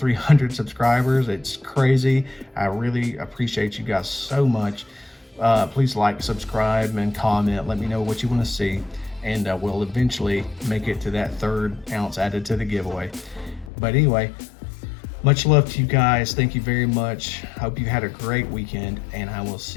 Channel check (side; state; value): right; drops out; at 13.7 s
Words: subscribers. It's crazy. I really appreciate you guys so much. Please like, subscribe, and comment. Let me know what you want to see, and we'll eventually make it to that 3rd ounce added to the giveaway. But anyway, much love to you guys. Thank you very much. Hope you had a great weekend, and I will